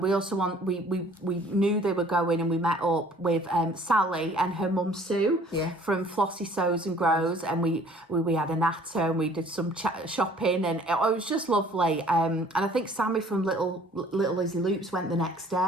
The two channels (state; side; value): normal; both; correlation 0.54